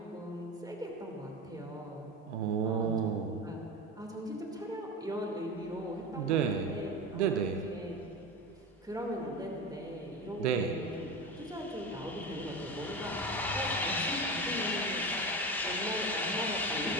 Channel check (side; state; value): both; normal; correlation 0.25